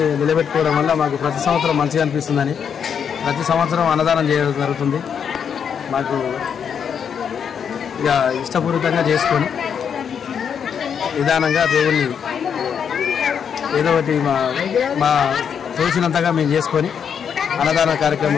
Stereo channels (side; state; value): right; quieter; 7.5 dB